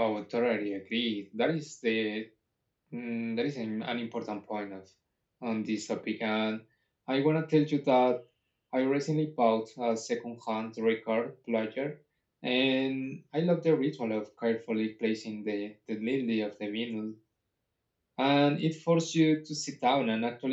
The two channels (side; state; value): both; identical; correlation 1.00